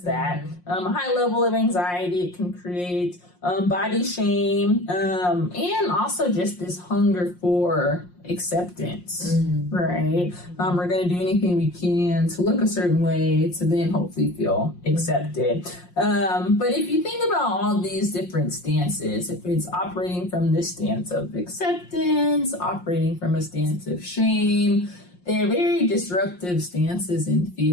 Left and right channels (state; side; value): late; right; 5.6 ms